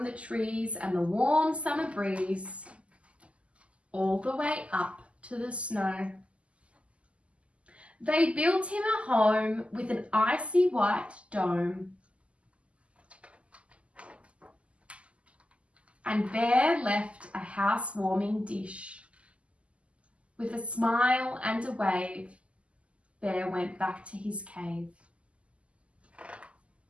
the trees and the warm summer breeze, all the way up to the snow. They built him a home with an icy white dome, and Bear left a house-warming dish. With a smile and a wave, Bear went back to his cave.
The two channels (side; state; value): left; late; 0.059 ms